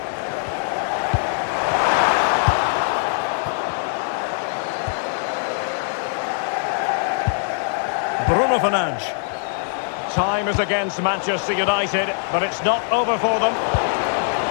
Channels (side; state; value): right; silent; 56 dB below the other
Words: Bruno Fernandes. Time is against Manchester United, but it's not over for them.